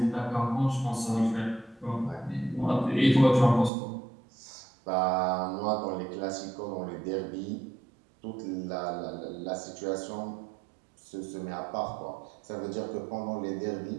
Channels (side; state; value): left; drops out; at 3.7 s